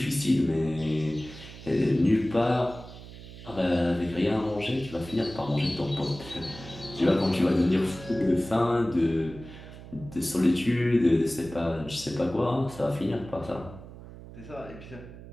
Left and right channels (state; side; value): noise; right; hum, 15 dB below the sound